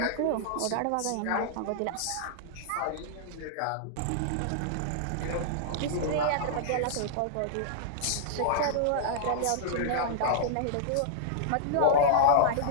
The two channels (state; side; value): different; both; correlation -0.02